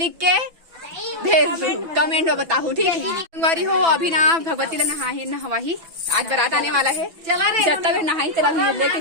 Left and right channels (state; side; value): late; left; 6.0 ms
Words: के भेज दू, कमेंट में बताऊ ठीक है। संगवारी हो अभी ना भगवती ला नहवाही, आज बारात आने वाला है। जब तक नहाई चला लेके